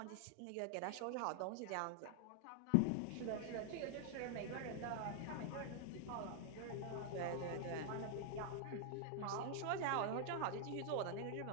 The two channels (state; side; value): different; both; correlation 0.00